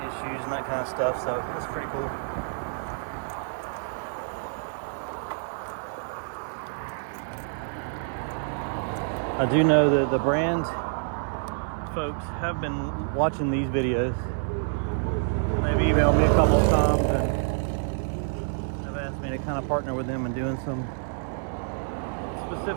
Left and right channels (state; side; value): silent; left; 60 dB below the other